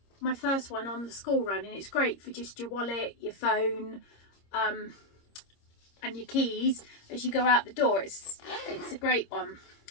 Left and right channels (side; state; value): right; late; 26 ms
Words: my first one on the school run, and it's great for just your wallet, your phone, and your keys as you go out the door. It's a great one.